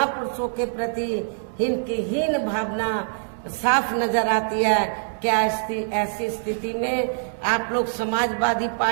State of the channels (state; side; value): silent; left; digital silence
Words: के प्रति इनकी हीन भावना साफ नजर आती है। क्या ऐसी स्थिति में आप लोग समाजवादी